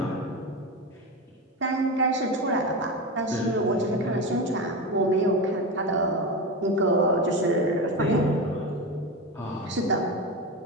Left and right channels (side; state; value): both; normal; correlation 0.20